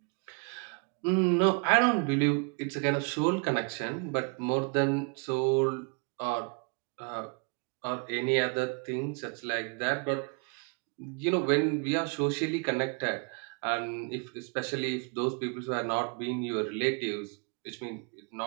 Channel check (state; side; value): quieter; left; 35.6 dB